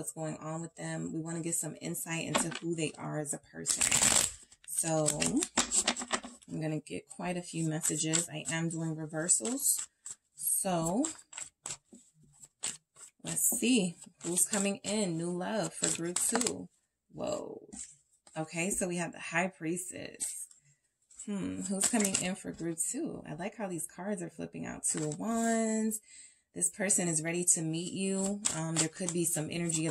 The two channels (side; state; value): both; identical; correlation 1.00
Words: going on with them. We want to get some insight into who they are as a person. So I'm going to get quite a few messages. I am doing reversals. So let's see who's coming in. New love for group 2. Whoa. Okay, so we have the High Priestess. Who's coming in for group 2? I like how these cards are flipping out. 2 of Wands. This person is ready to meet you. There could be some energy